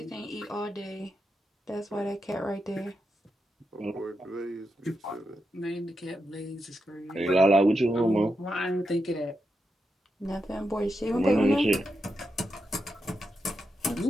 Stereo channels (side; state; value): both; normal; correlation 0.86